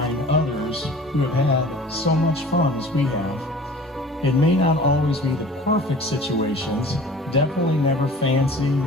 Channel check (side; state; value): both; normal; correlation 0.44